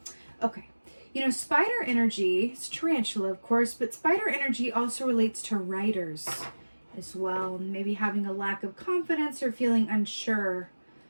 Okay. You know, spider energy, it's tarantula, of course, but spider energy also relates to writers as well. Maybe having a lack of confidence or feeling unsure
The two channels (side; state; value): both; inverted; correlation -1.00